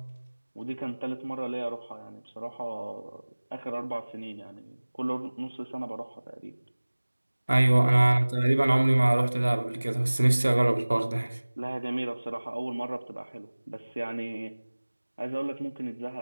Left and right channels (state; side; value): inverted; both; correlation -1.00